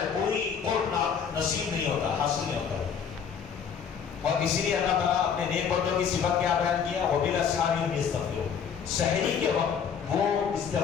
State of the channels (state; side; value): quieter; right; 7.1 dB